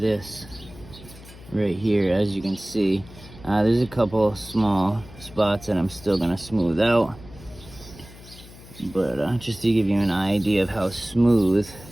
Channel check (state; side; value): noise; left; hum, 19 dB below the sound